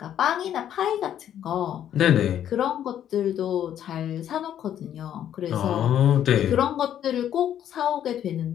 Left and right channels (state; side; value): quieter; right; 10.4 dB